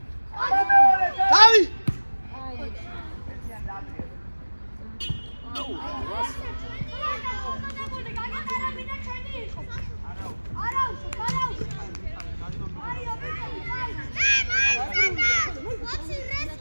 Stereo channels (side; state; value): both; inverted; correlation -1.00